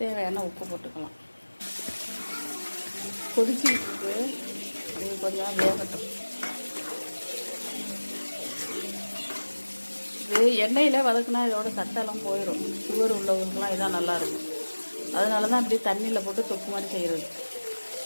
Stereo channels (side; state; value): both; inverted; correlation -1.00